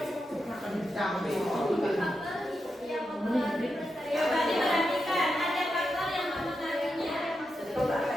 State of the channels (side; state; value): both; normal; correlation 0.87